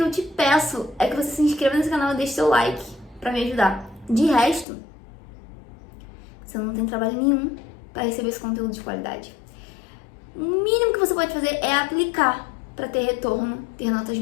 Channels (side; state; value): right; drops out; at 4.7 s